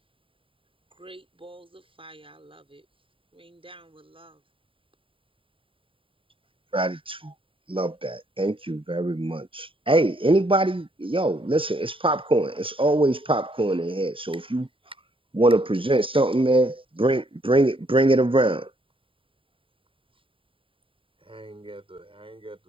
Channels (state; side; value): late; left; 0.25 ms